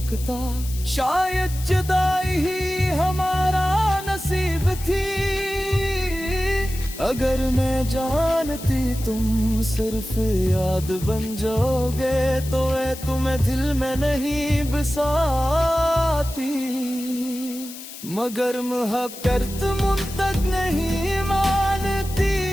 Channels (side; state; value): left; noise; hiss, 13 dB below the sound